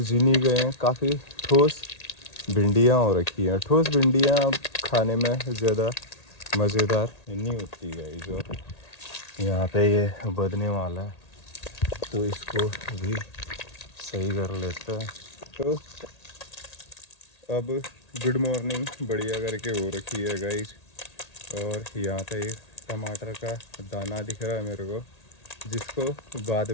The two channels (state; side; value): late; right; 1.8 ms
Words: जिनी गए हैं। काफ़ी ठोस भिंडियाँ हो रखी हैं। ठोस भिंडियाँ खाने में ज़्यादा मज़ेदार नहीं होती है। जो यहाँ पे ये बदने वाला है तो इसको भी सही कर लेते हैं। तो अब गुड मॉर्निंग बढ़िया करके हो रखी है गाइस। और यहाँ पे एक टमाटर का दाना दिख रहा है मेरे को, जिसको बाद